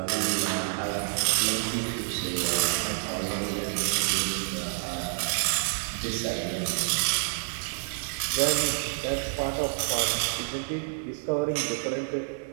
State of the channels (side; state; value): left; silent; digital silence